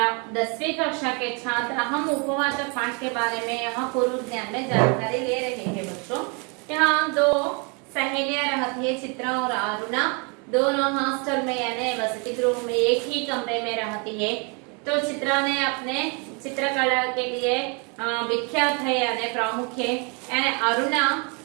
10वीं कक्षा के छात्र हम उपवाचक पाठ के बारे में यहाँ पूर्व ज्ञान में जानकारी ले रहे हैं बच्चों। यहाँ दो सहेलियां रहती है, चित्रा और अरुणा। दोनों हॉस्टल में यानी वसति गृह में एक ही कमरे में रहती है। तो चित्रा ने अपने चित्रकला के लिए विख्यात है यानी प्रमुख है, यानी अरुणा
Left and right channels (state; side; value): quieter; left; 33.7 dB